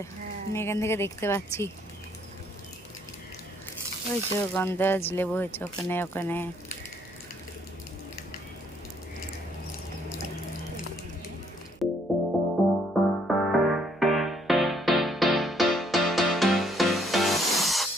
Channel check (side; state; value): right; noise; hum, 26 dB below the sound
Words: আমি এখান থেকে দেখতে পাচ্ছি। ওই তো গন্ধরাজ লেবু হয়েছে ওখানে ওখানে।